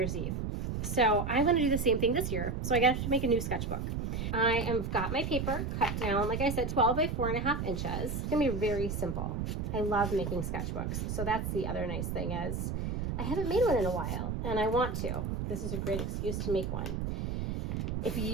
Eve. So I'm going to do the same thing this year. So I got to make a new sketchbook. I have got my paper cut down, like I said, 12 by 4.5 inches. It's going to be very simple. I love making sketchbooks. So that's the other nice thing is I haven't made one in a while, and I want to. This is a great excuse to make one. If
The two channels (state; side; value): noise; right; rumble, 2 dB below the sound